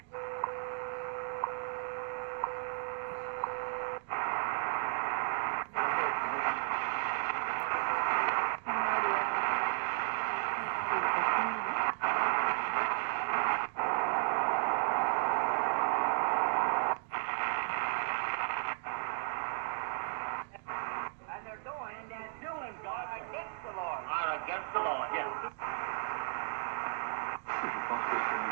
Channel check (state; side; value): silent; left; digital silence